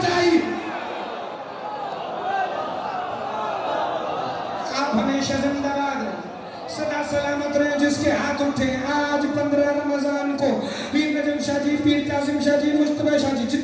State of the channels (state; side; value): identical; both; correlation 1.00